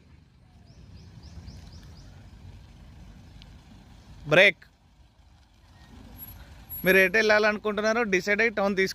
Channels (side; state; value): both; identical; correlation 1.00